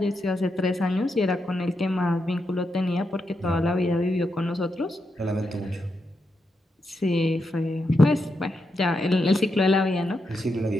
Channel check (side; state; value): both; normal; correlation 0.84